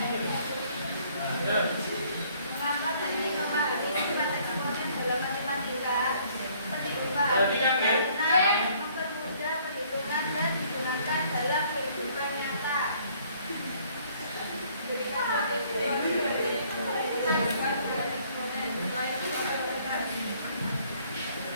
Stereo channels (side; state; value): both; inverted; correlation -0.61